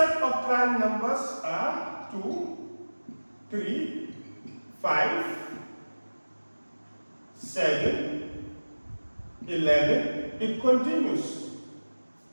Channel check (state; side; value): inverted; both; correlation -1.00